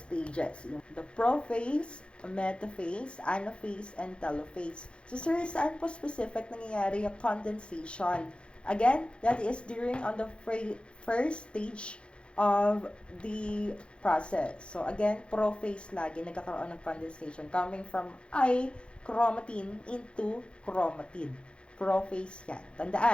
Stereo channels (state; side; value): late; right; 0.057 ms